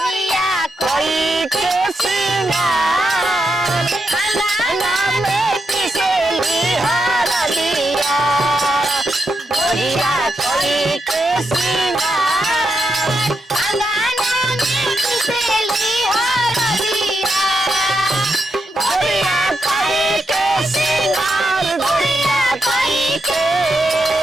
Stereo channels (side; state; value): both; normal; correlation 0.84